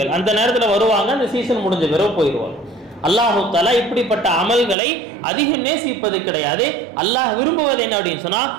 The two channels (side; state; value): left; drops out; at 4.8 s